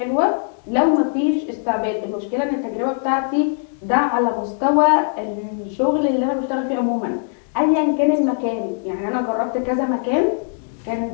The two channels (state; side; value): silent; right; 65 dB below the other